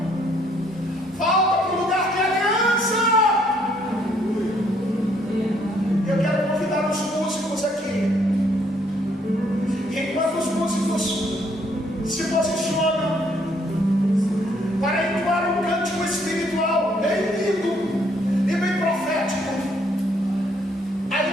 Volta para o lugar de aliança. Eu quero convidar os músicos aqui. E enquanto os músicos se posicionam,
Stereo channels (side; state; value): both; normal; correlation 0.67